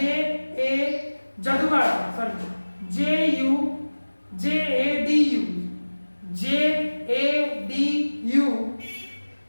A Jaugada sorry J U J A D U, J A D U,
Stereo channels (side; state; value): both; inverted; correlation -1.00